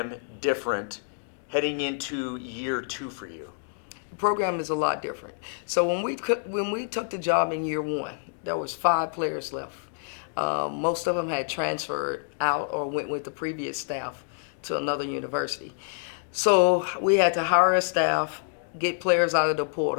different heading into year 2 for you? The program is a lot different. So when we took the job in year 1, there was 5 players left. Most of them had transferred out or went with the previous staff to another university. So we had to hire a staff, get players out of the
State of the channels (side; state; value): right; silent; digital silence